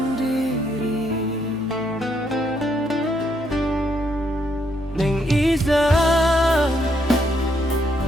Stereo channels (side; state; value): both; normal; correlation 0.74